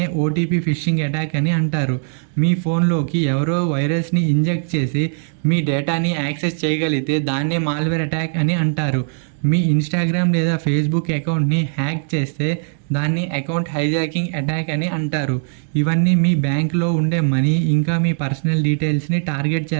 ఓటీపీ ఫిషింగ్ అటాక్ అని అంటారు. మీ ఫోన్లోకి ఎవరో వైరస్ని ఇంజెక్ట్ చేసి మీ డేటాని యాక్సెస్ చేయగలిగితే దాన్నే మాల్వేర్ అటాక్ అని అంటారు. మీ ఇన్స్టాగ్రామ్ లేదా ఫేస్బుక్ అకౌంట్ని హ్యాక్ చేస్తే దాన్ని అకౌంట్ హైజాకింగ్ అటాక్ అని అంటారు. ఇవన్నీ మీ బ్యాంక్లో ఉండే మనీ ఇంకా మీ పర్సనల్ డీటెయిల్స్ని టార్గెట్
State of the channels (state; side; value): silent; left; 66 dB below the other